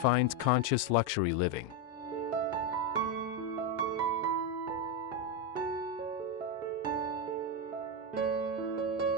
conscious luxury living.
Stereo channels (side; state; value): both; normal; correlation 0.08